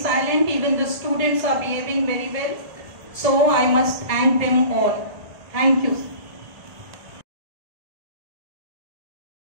Even the students are behaving very well. So I must thank them all. Thank you.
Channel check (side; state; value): left; late; 1.7 ms